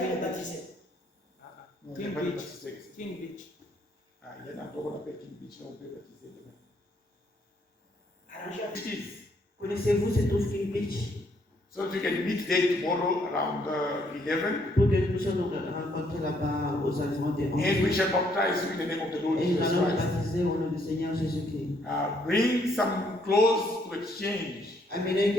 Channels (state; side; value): normal; both; correlation 0.70